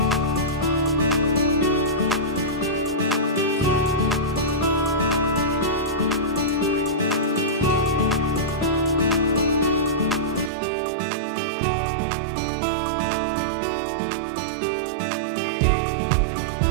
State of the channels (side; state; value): left; drops out; at 10.5 s